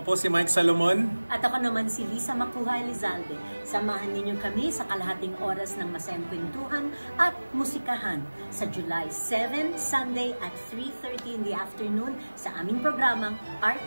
po si Mike Salomon. At ako naman si Lisa Makuha Elizalde. Samahan ninyo kami sa kalahating oras ng masayang kwentuhan at musikahan sa July 7, Sunday at 3:30 in the afternoon sa aming programang Art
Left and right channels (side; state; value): both; inverted; correlation -1.00